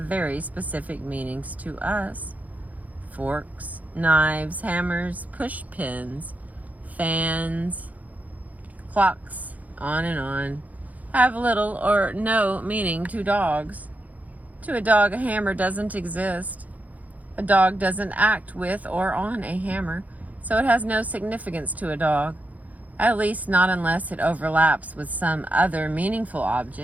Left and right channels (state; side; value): late; left; 0.076 ms